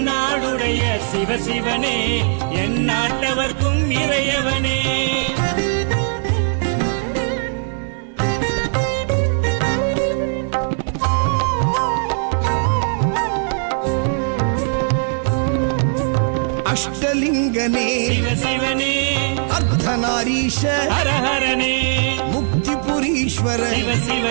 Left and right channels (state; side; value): silent; left; 66 dB below the other